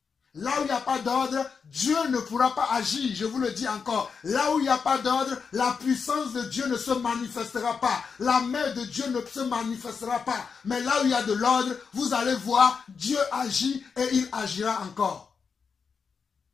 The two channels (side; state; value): right; quieter; 5.8 dB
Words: Là où il n'y a pas d'ordre, Dieu ne pourra pas agir. Je vous le dis encore. Là où il n'y a pas d'ordre, la puissance de Dieu ne se manifestera pas. La main de Dieu ne se manifestera pas. Mais là où il y a de l'ordre, vous allez voir, Dieu agit et il agira encore.